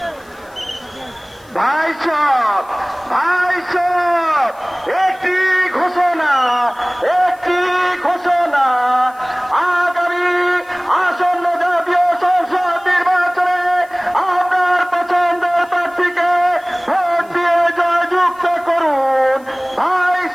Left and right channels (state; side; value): noise; left; hiss, 29 dB below the sound